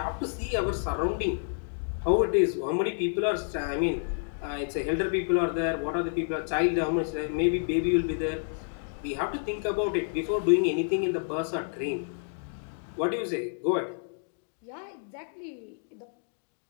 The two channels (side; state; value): right; silent; digital silence